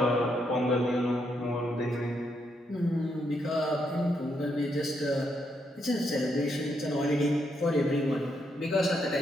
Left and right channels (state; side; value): normal; both; correlation 0.78